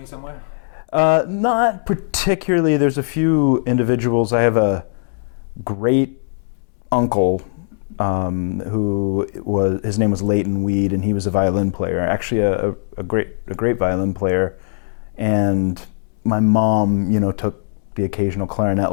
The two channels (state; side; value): silent; right; 66 dB below the other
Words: somewhere? Not particularly. There's a few individuals. I have a great uncle his name was Leighton Weed, and he was a violin player, actually a great violin player. And my mom, took the occasional clarinet